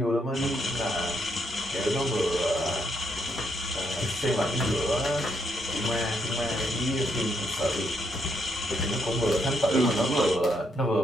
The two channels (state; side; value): normal; both; correlation 0.75